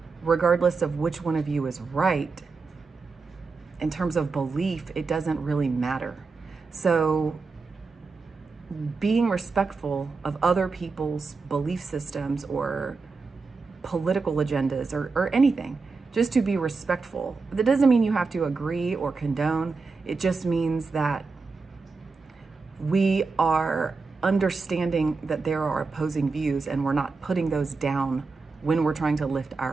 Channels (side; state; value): left; quieter; 4.3 dB